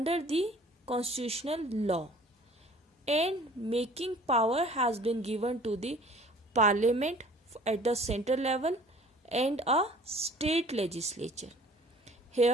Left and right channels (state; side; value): normal; both; correlation 0.50